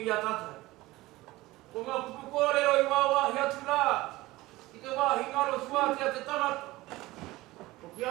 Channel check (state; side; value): quieter; left; 19.0 dB